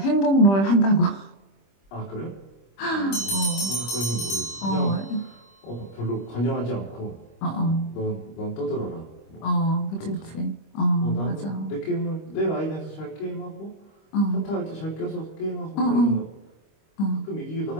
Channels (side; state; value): right; late; 25 ms